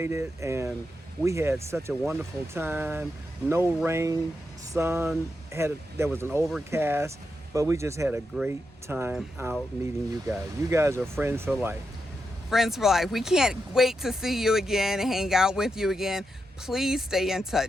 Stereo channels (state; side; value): normal; both; correlation 0.86